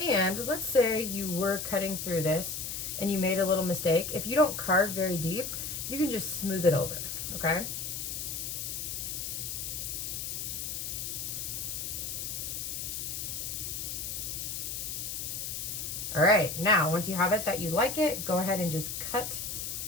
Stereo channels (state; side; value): noise; left; hiss, 4 dB below the sound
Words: let's say you were cutting through this and you made a little mistake. If you don't carve very deep, you can just smooth it over, okay? All right, now once you have it that you like it, go ahead and just cut